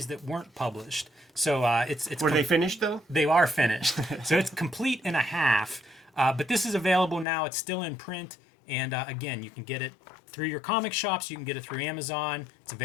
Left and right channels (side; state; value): right; drops out; at 7.2 s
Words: that weren't published. So it's Were they finished, though? They are finished. So it's complete in a half. But this is available now. It's still in print. And again, you can get it through your comic shops. You can get it through Amazon. It's